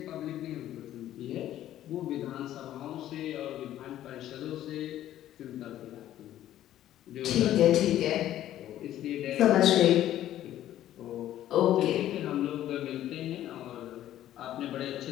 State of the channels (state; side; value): quieter; right; 12.6 dB